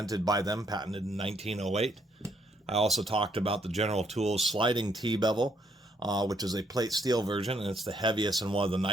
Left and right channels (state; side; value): normal; both; correlation 0.71